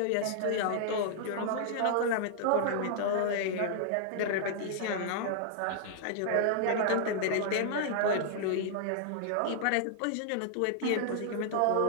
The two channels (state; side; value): different; both; correlation -0.01